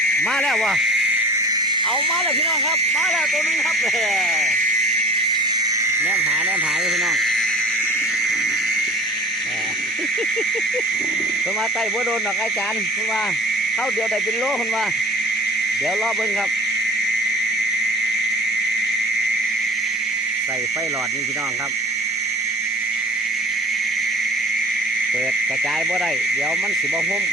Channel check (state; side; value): normal; both; correlation 0.43